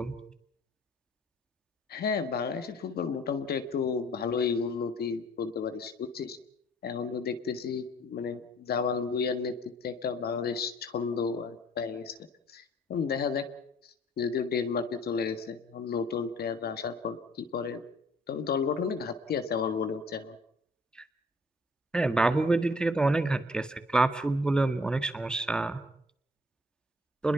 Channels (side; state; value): both; normal; correlation 0.57